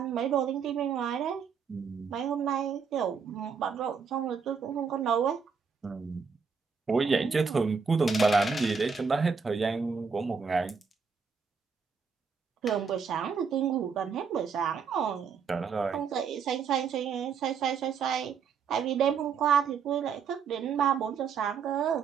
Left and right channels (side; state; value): left; quieter; 6.0 dB